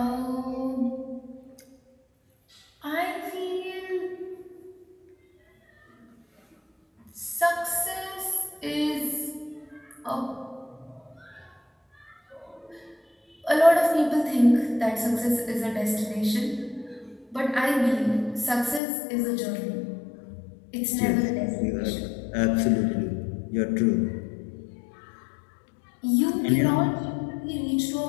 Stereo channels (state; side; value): drops out; right; at 18.8 s